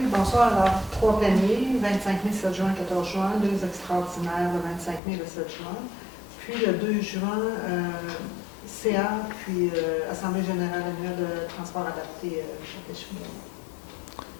bonsoir. Alors, trois pléniers, 25 mai, 7 juin, 14 juin, deux extraordinaires, le 25 mai, le 7 juin. Puis le 2 juin, CA, puis Assemblée générale annuelle de transport adapté Chapelle-Chouinard.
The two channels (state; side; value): drops out; right; at 5.0 s